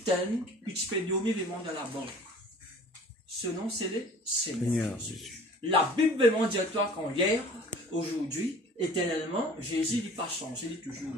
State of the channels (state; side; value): normal; both; correlation 0.46